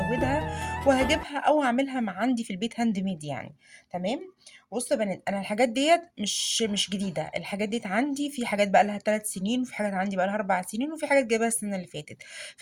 وهجيبها او اعملها مع عندي في البيت هاند ميد يعني. تمام. بصوا يا بنات، انا الحاجات ديت مش جديدة، الحاجات ديت عندي في حاجات بقى لها 3 سنين وفي حاجات عندي بقى لها 4 سنين وفي حاجات جايبها السنة اللي فاتت.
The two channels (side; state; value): both; identical; correlation 1.00